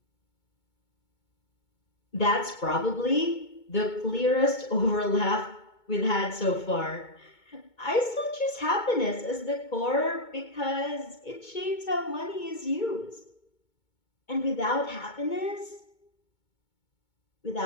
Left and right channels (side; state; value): right; late; 2.2 ms